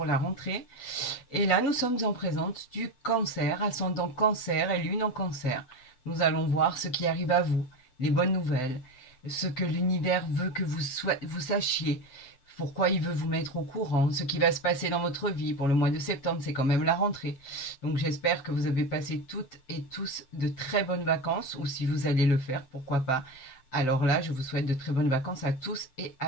la rentrée. Et là, nous sommes en présence du cancer, ascendant cancer et lune en cancer. Nous allons voir ce qui arrive à vous, les bonnes nouvelles, ce que l'univers veut que vous sachiez, pourquoi il veut vous mettre au courant, ce qui va se passer dans votre vie pour le mois de septembre, c'est quand même la rentrée. Donc j'espère que vous avez passé toutes et tous de très bonnes vacances, ou si vous allez le faire, pourquoi pas. Alors là, je vous souhaite de très bonnes vacances à tous et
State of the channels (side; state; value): right; late; 7.8 ms